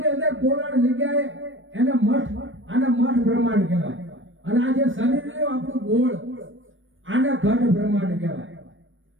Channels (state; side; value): late; left; 0.57 ms